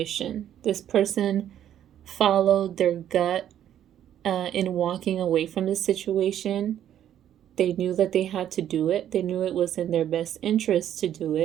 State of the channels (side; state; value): left; quieter; 10.7 dB